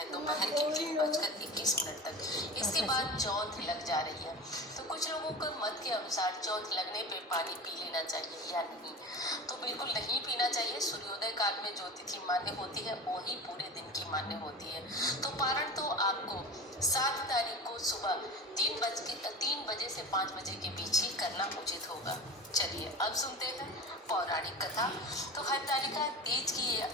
दोपहर के 3:21 तक। इसके बाद चौथ लग जा रही है, तो कुछ लोगों को मत के अनुसार चौथ लगने पे पानी पी लेना चाहिए या नहीं, तो बिल्कुल नहीं पीना चाहिए। सूर्योदय काल में जो तिथि मान्य होती है वही पूरे दिन की मान्य होती है। तो पारण तो आपको 7 तारीख को सुबह 3 बजे से 5 बजे के बीच ही करना उचित होगा। चलिए अब सुनते हैं पौराणिक कथा। तो हरतालिका तीज की ये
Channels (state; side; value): normal; both; correlation 0.32